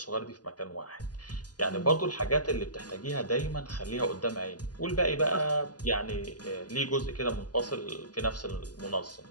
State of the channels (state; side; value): late; right; 0.69 ms